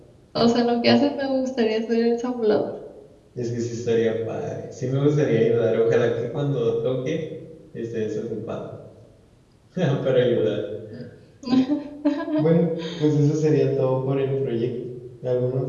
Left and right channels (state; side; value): identical; both; correlation 1.00